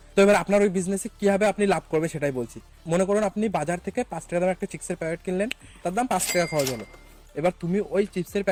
তো এবার আপনার ওই বিজনেসে কিভাবে আপনি লাভ করবে সেটাই বলছি। মনে করুন আপনি বাজার থেকে 5 টাকা দামের একটা চিপসের প্যাকেট কিনলেন, তার দাম 5 টাকা খরচ হলো। এবার তুমি ওই চিপসের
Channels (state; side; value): identical; both; correlation 1.00